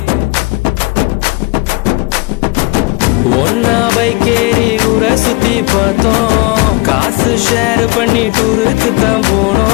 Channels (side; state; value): right; quieter; 24.7 dB